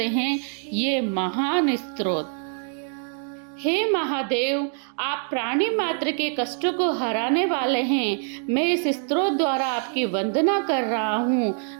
हैं ये महान स्तोत्र। हे महादेव, आप प्राणी मात्र के कष्टों को हराने वाले हैं। मैं इस स्तोत्र द्वारा आपकी वंदना कर रहा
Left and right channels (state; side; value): silent; left; 55 dB below the other